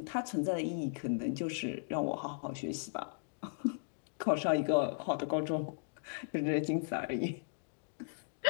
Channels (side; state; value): right; silent; digital silence